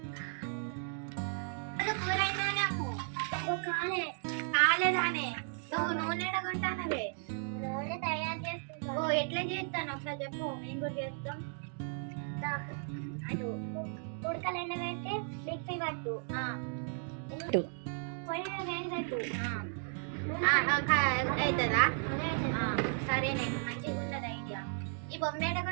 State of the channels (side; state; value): left; silent; 54 dB below the other